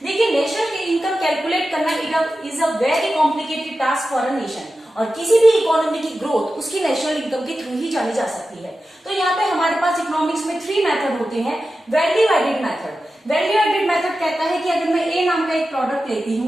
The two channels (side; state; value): both; normal; correlation 0.93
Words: देखिए, नेशनल इनकम कैलकुलेट करना is a very complicated task for a nation, और किसी भी इकोनॉमी की ग्रोथ उसकी नेशनल इनकम के थ्रू ही जानी जा सकती है। तो यहाँ पे हमारे पास इकोनॉमिक्स में 3 मेथड होते हैं। Value added method. Value added method कहता है कि अगर मैं ए नाम का एक प्रोडक्ट लेती